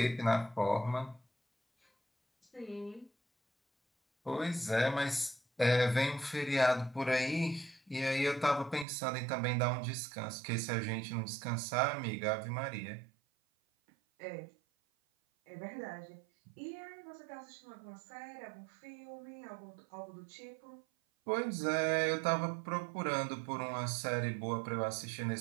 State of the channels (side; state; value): left; drops out; at 8.8 s